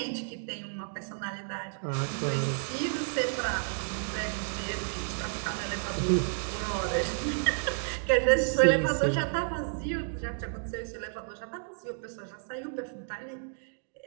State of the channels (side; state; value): left; silent; digital silence